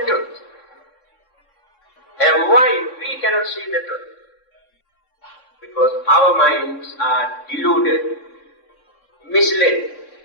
truth. And why we cannot see the truth? Because our minds are deluded, misled,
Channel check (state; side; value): late; right; 3.7 ms